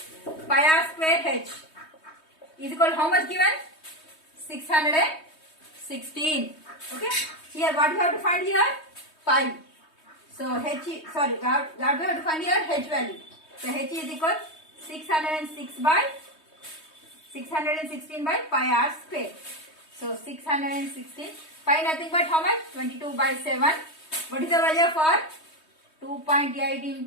pi r square h is equal to how much given? 616. Okay. Here what you have to find here? Pi. So h, sorry, what we have to find here? H value. So h is equal 616 by 616 by pi r square. So 616. Pi nothing but how much? 22 by 7. What is the value for? 2.8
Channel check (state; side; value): late; right; 3.2 ms